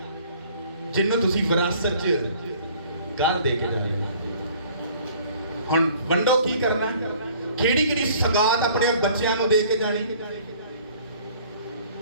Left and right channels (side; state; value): both; inverted; correlation -0.54